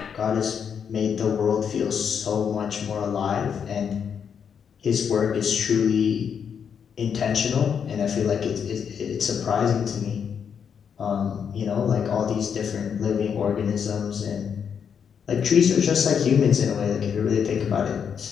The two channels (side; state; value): right; quieter; 7.3 dB